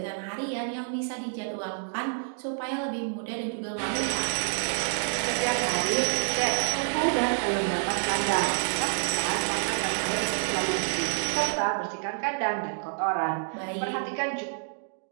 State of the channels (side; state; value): left; silent; digital silence